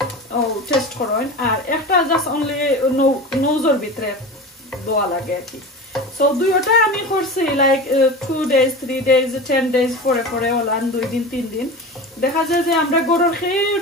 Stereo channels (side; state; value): both; normal; correlation 0.30